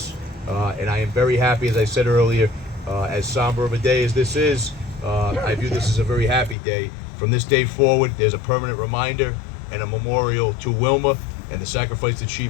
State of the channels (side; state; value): right; drops out; at 6.6 s